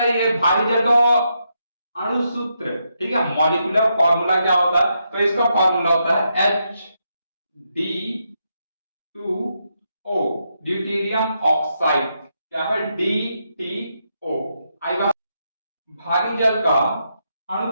ये भारी जल का अणुसूत्र, ठीक है, मॉलिक्यूलर फॉर्मूला क्या होता है, तो इसका फॉर्मूला होता है H2O, ड्यूटेरियम ऑक्साइड, क्या है, DTO। आई बात, भारी जल का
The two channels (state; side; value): inverted; both; correlation -0.81